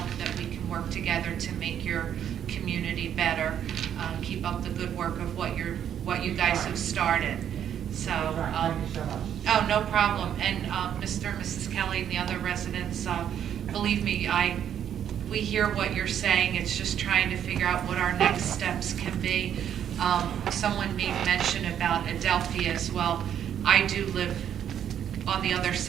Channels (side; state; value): left; quieter; 9.5 dB